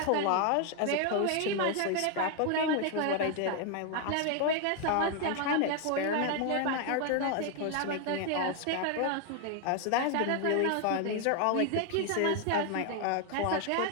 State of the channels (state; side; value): different; both; correlation 0.00